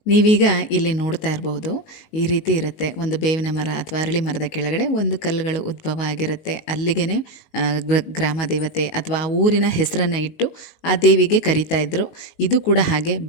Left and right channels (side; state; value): right; late; 19 ms